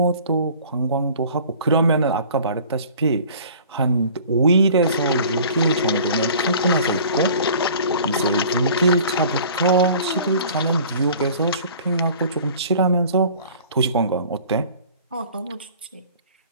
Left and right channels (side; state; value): both; inverted; correlation -0.47